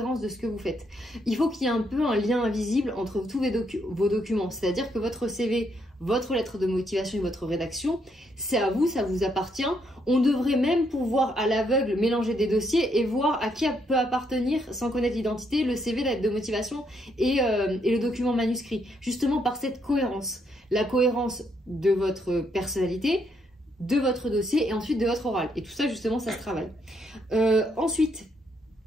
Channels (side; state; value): both; normal; correlation 0.74